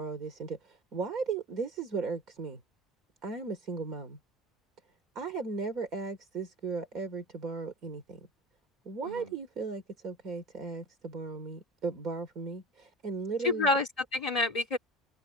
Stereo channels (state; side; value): normal; both; correlation 0.32